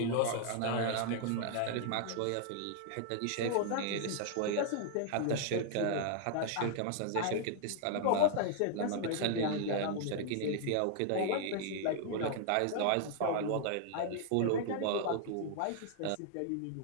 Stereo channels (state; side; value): different; both; correlation 0.00